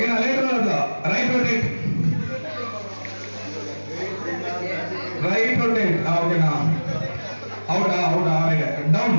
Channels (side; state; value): both; inverted; correlation -1.00